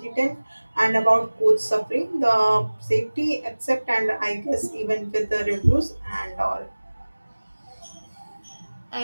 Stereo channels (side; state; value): both; inverted; correlation -1.00